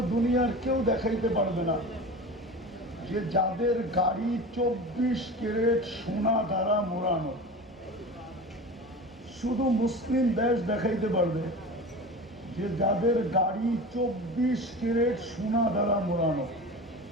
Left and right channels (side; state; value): both; normal; correlation 0.32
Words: দুনিয়ার কেউ দেখাইতে পারবে না যে যাদের গাড়ি 24 ক্যারেট সোনা দ্বারা মোড়ানো। শুধু মুসলিম দেশ দেখাইতে পারবে যে যাদের গাড়ি 24 ক্যারেট সোনা দ্বারা মোড়ানো।